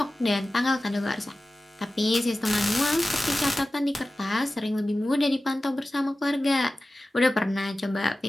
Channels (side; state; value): both; normal; correlation 0.95